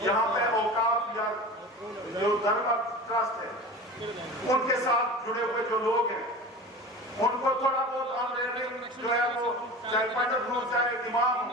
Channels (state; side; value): normal; both; correlation 0.34